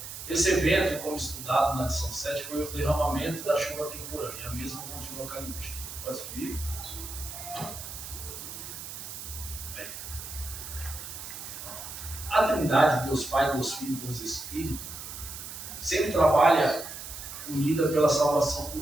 Esse evento, como estudado na lição 7, foi o derramamento da chuva temporânea. A mesma continua caindo hoje. Pode subir? A Trindade, Deus Pai, Deus Filho e Deus Espírito, sempre trabalha unida pela salvação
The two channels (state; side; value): noise; right; hiss, 10 dB below the sound